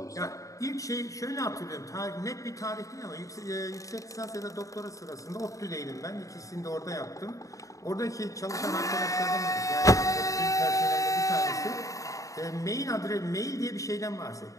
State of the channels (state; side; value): late; right; 0.16 ms